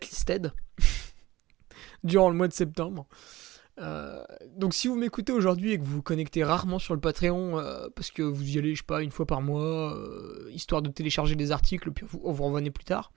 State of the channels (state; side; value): quieter; left; 17.9 dB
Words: durant le mois de septembre. Donc si vous m'écoutez aujourd'hui et que vous vous connectez rarement sur le Patreon parce que vous y allez, je sais pas, une fois par mois, histoire de télécharger des articles, puis vous revenez plus tard,